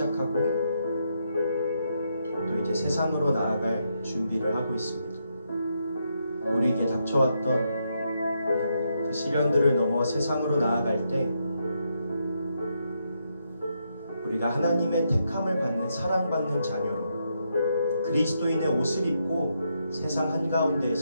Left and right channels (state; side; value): inverted; both; correlation -0.80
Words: 또 이제 세상으로 나아갈 준비를 하고 있습니다. 우리에게 닥쳐왔던 그 시련들을 넘어 세상으로 나아갈 때 우리가 하나님의 택함을 받는 사랑받는 자녀로 그리스도인의 옷을 입고 세상